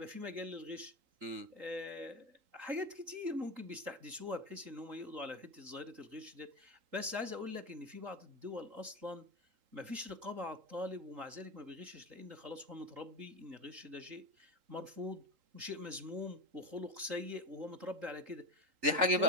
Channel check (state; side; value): late; left; 3.8 ms